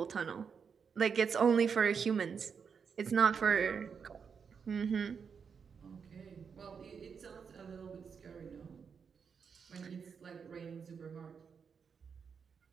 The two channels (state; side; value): quieter; left; 6.3 dB